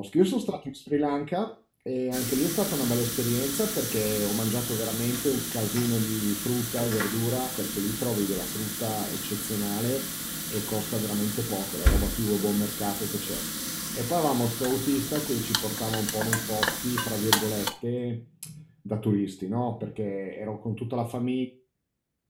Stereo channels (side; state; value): both; identical; correlation 1.00